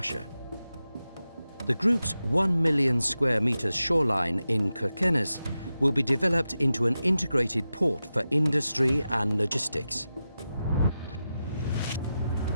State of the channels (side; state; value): both; inverted; correlation -0.92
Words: The group's 1 million square meters shoreline in Kirkenes will be developed into an integrated port for industry and logistics.